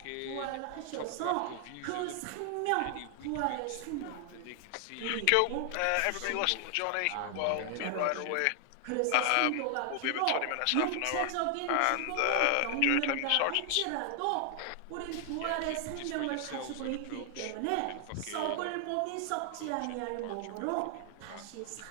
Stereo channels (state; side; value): different; both; correlation 0.00